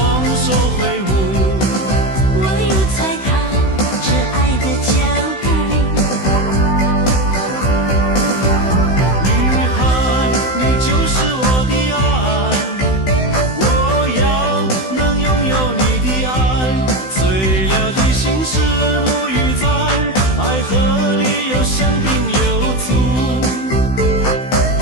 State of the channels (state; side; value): late; right; 16 ms